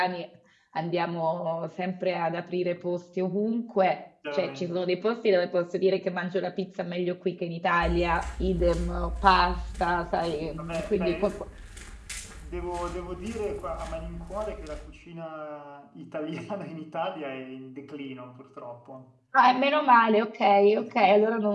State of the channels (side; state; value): both; identical; correlation 1.00